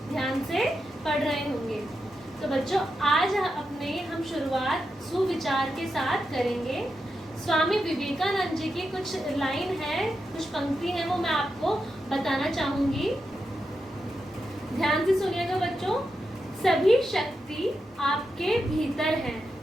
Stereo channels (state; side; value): normal; both; correlation 0.87